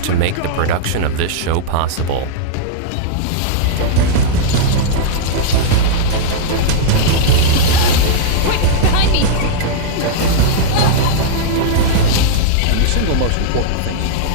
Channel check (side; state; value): both; different; correlation -0.02